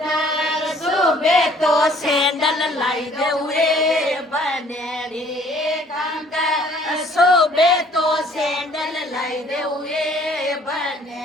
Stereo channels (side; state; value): both; normal; correlation 0.58